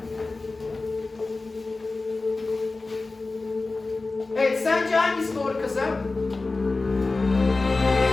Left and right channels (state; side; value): quieter; right; 3.5 dB